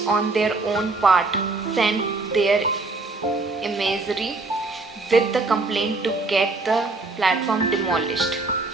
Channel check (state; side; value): quieter; left; 3.5 dB